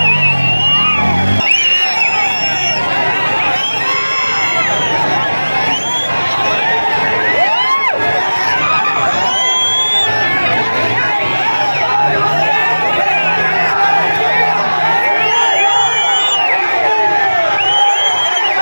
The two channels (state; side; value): inverted; both; correlation -1.00